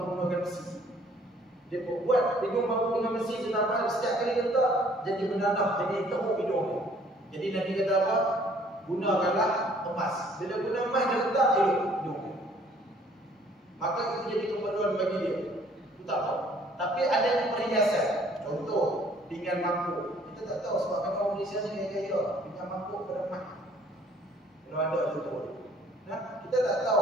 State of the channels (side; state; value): both; normal; correlation 0.59